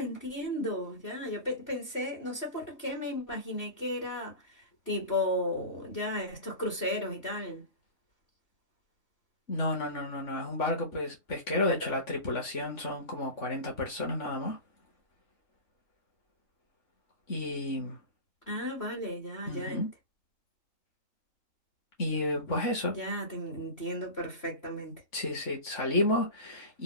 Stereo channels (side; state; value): right; late; 3.5 ms